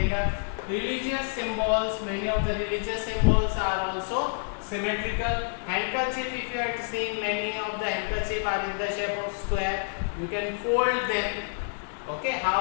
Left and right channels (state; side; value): silent; right; digital silence